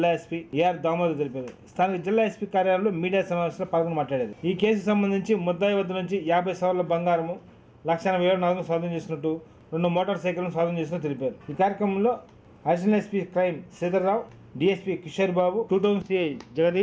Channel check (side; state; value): both; identical; correlation 1.00